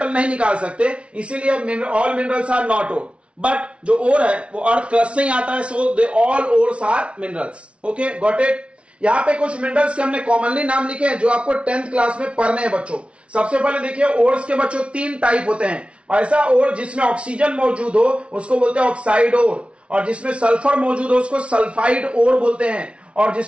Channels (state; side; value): late; left; 0.060 ms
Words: नहीं निकाल सकते, इसीलिए all minerals are not ore. But जो ओर है वो अर्थ क्रस्ट से ही आता है, so they all ores are minerals. Okay, got it. यहां पे कुछ मिनरल्स के हमने कॉमनली नाम लिखे हैं जो आपको 10th क्लास में पढ़ने हैं बच्चों। सबसे पहले देखिए ओर्स के बच्चों 3 टाइप होते हैं। ऐसा ओर जिसमें ऑक्सीजन मौजूद हो उसको बोलते हैं ऑक्साइड ओर, और जिसमें सल्फर मौजूद हो उसको सल्फाइड ओर बोलते हैं, और